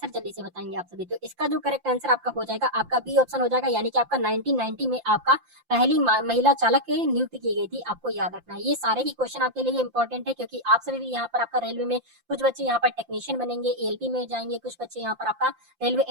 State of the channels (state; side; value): late; left; 5.8 ms